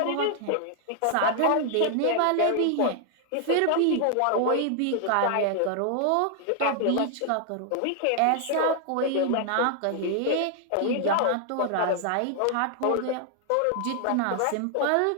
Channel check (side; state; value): both; different; correlation 0.00